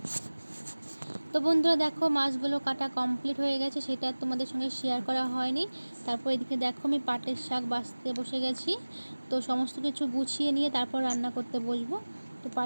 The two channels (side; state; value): both; inverted; correlation -1.00